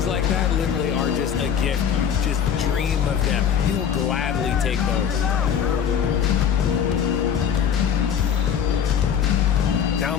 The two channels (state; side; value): quieter; right; 8.2 dB